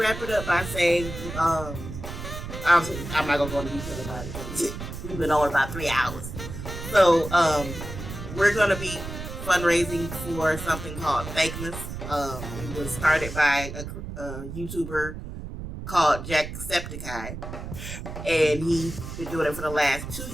it up by saying, I'm not gonna go into detail about it because we've been on about 3 hours. So we're gonna be fundraising for something called Fakeness. It was started by a YouTuber called Jacksepticeye, and he's been doing it for the last 2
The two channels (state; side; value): noise; right; rumble, 9 dB below the sound